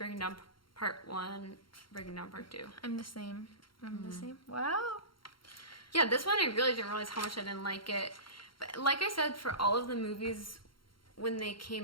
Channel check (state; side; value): late; right; 0.73 ms